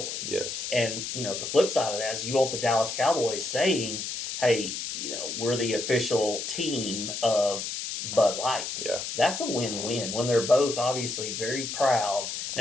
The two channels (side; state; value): left; noise; hiss, 5 dB below the sound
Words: Yes. And, you know, the flip side of that is you want the Dallas Cowboys saying, hey, you know, we're the official team of Bud Light. Yeah. That's a win-win when they're both obviously very proud